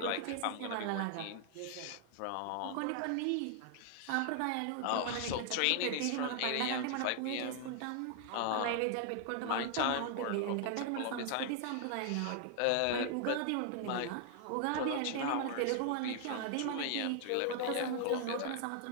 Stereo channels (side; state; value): both; different; correlation 0.00